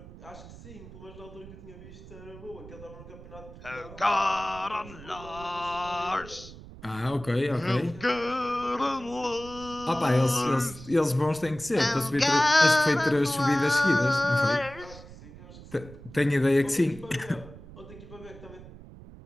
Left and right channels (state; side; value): noise; right; rumble, 17 dB below the sound